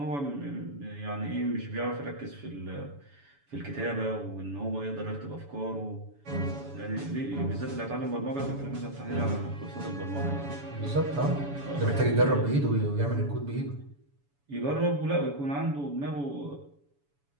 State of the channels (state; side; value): late; left; 7.0 ms